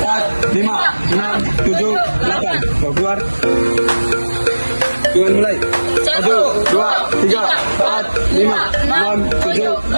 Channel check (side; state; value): both; inverted; correlation -1.00